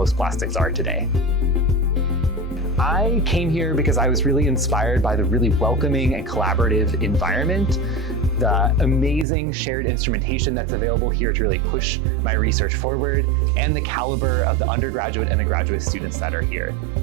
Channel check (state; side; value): drops out; left; at 9.2 s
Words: plastics are today. I came here because I was really inspired by the really welcoming and collaborative environment, the amazing shared instrumentation that's available here to really push my research forward, and the caliber of the undergraduate and the graduate students that are here.